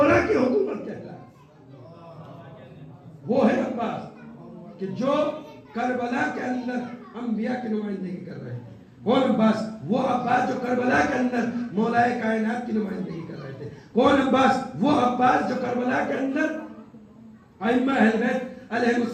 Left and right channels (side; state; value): both; identical; correlation 1.00